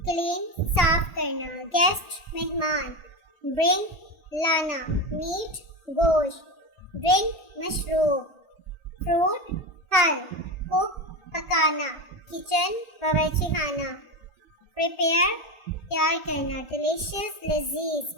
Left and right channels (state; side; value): late; right; 1.4 ms